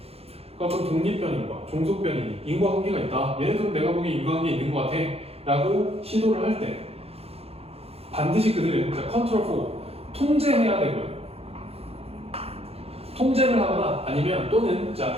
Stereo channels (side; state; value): left; late; 0.29 ms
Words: 그럼 독립변인과 종속변인이 인과관계가 있다. 얘네들은 내가 보기엔 인과관계 있는 것 같아 라고 시도를 할 때 반드시 그들은 컨트롤 4 통제해야 되고요. 통제를 하거나 아니면 또는